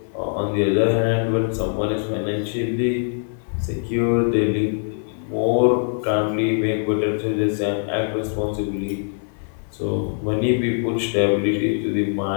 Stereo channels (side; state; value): right; silent; 60 dB below the other